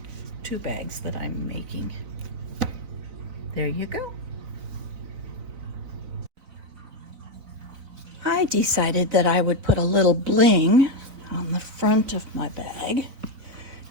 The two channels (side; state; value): left; late; 4.0 ms